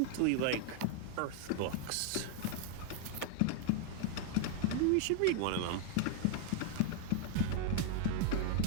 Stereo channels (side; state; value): both; different; correlation 0.01